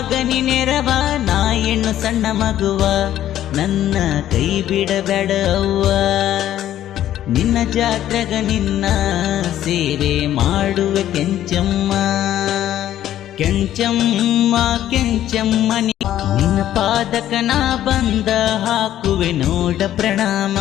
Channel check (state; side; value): quieter; right; 12.2 dB